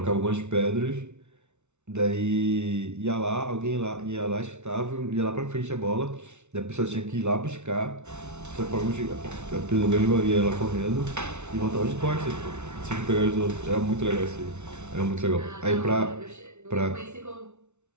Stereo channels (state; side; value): late; left; 0.82 ms